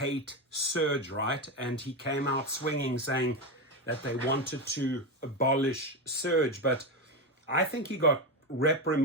surge, right? And he came out swinging saying that they wanted to abolish surge. But I think he got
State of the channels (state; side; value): normal; both; correlation 0.14